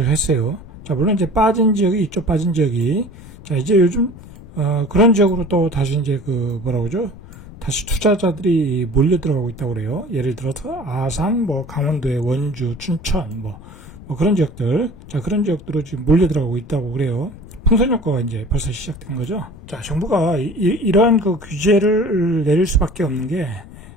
했어요. 자, 물론 이제 빠진 지역이 있죠. 빠진 지역이. 자, 이제 요즘 그런 지역으로 또 다시 이제 다시 투자자들이 몰려 들어가고 있다고 그래요. 예를 들어서 아산, 강원도의 원주, 춘천, 그런 지역들. 자, 그런 지역들로 지금 몰려 들어가고 있다고 그래요. 풍선 효과가 이제 벌써 시작된 거죠. 자, 정부가 이러한 규제를 내릴 수밖에 없는 게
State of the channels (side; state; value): left; noise; rumble, 18 dB below the sound